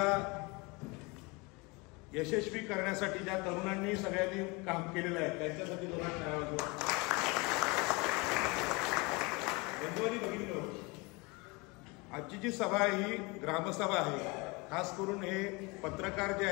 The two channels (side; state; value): right; quieter; 26.6 dB